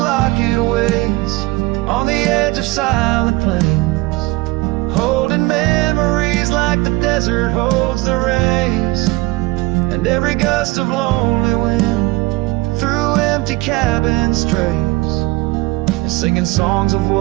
waits on the edge of silent plains, holding memories like the desert holds the rays, and every gust of lonely wind through empty cabin strays, and singing songs of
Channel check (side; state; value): left; quieter; 21.0 dB